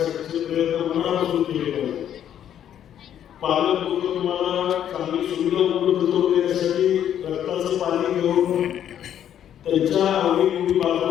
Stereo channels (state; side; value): quieter; right; 10.1 dB